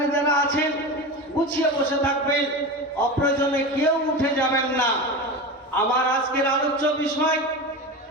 যারা আছেন গুছিয়ে বসে থাকবেন, অপ্রয়োজনে কেউ উঠে যাবেন না। আমার আজকের আলোচ্য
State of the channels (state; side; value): normal; both; correlation 0.25